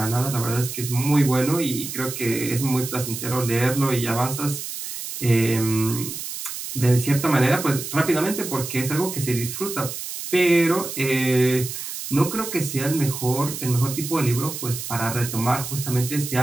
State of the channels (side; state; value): right; noise; hiss, 7 dB below the sound